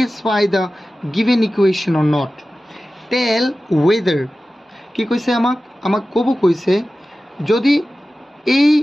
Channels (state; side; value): normal; both; correlation 0.95